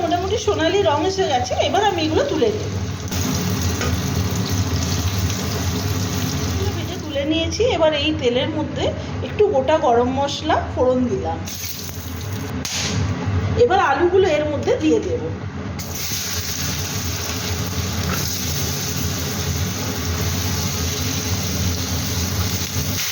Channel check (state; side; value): identical; both; correlation 1.00